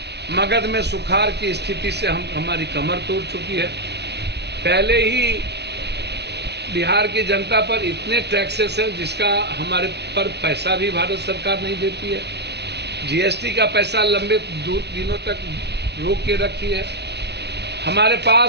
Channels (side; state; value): left; late; 0.49 ms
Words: मगध में सुखाड़ की स्थिति से हमारी कमर तोड़ चुकी है। पहले ही बिहार की जनता पर इतने टैक्सेस है जिसका हमारे पर पैसा भी भारत सरकार नहीं देती है। जीएसटी का पैसा लंबे दिनों तक रोक के रखी है। हमारे